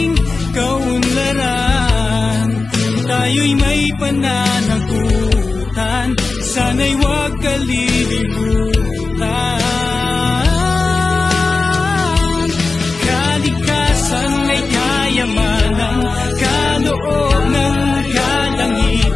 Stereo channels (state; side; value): quieter; right; 3.9 dB